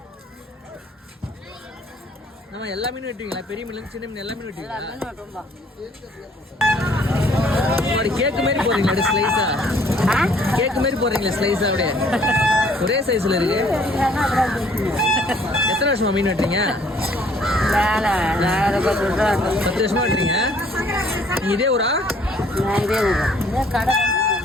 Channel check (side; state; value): both; normal; correlation 0.60